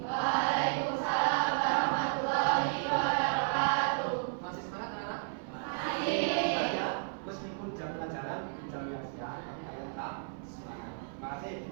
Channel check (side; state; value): left; silent; 56 dB below the other